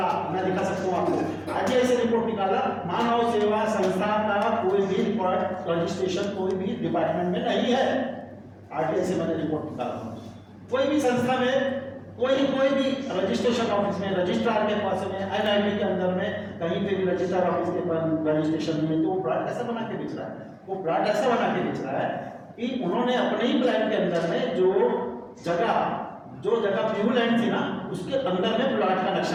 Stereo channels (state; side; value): identical; both; correlation 1.00